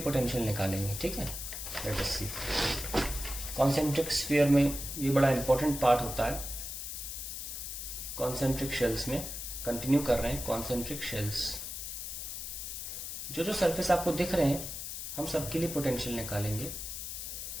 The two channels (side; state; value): left; noise; hiss, 6 dB below the sound